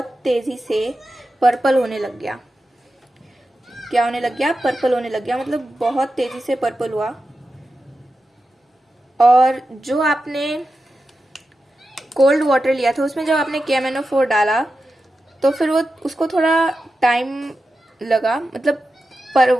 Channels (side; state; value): both; normal; correlation 0.91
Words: पर्पल होने लग गया। क्या होने लग गया? पर्पल होने लग गया, मतलब बहुत तेजी से पर्पल हुआ। और जो आपने कोल्ड वाटर लिया था उसमें जब आपने KMnO4 डाला तो फिर वो उसको थोड़ा टाइम लगा, मतलब